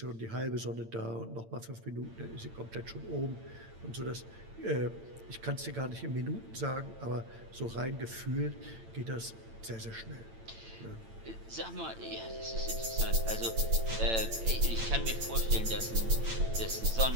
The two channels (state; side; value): late; left; 8.9 ms